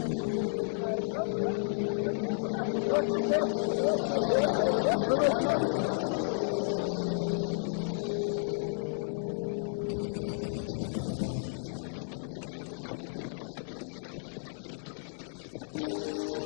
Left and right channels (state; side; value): silent; right; digital silence